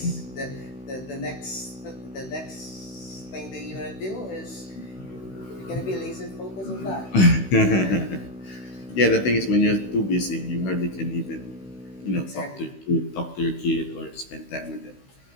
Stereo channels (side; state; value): right; late; 16 ms